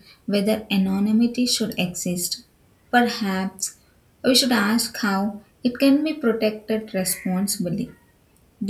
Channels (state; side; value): identical; both; correlation 1.00